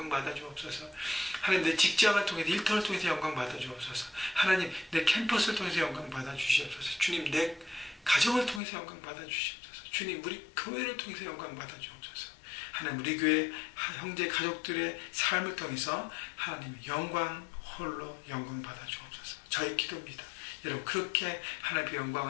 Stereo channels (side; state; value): right; drops out; at 8.6 s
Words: 받아주옵소서. 하나님 내 직장을 통해서 일터를 통해서 영광 받아주옵소서. 하나님 내 캠퍼스를 통해서 영광 받아주시옵소서. 주님 내 가정을 통해서 영광 받아주시옵소서. 주님 우리 교회를 통해서 영광 받아주옵소서. 하나님 우리 교회 형제 가족들의 삶을 통해서 하나님의 영광 홀로 영광 받아주옵소서. 저의 기도입니다. 여러분 그렇게 하나님의